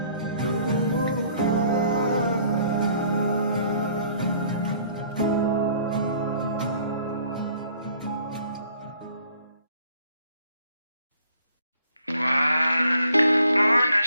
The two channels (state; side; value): inverted; both; correlation -0.60